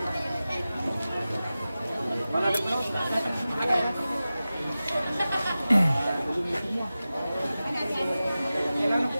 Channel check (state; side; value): inverted; both; correlation -0.95